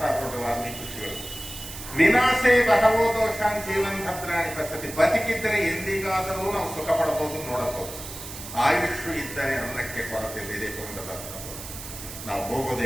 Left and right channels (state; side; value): noise; right; hiss, 11 dB below the sound